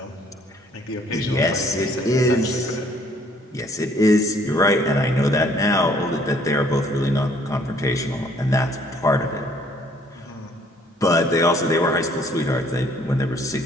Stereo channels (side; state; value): both; normal; correlation 0.61